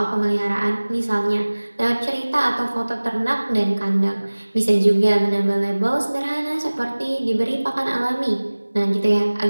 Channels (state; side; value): inverted; both; correlation -1.00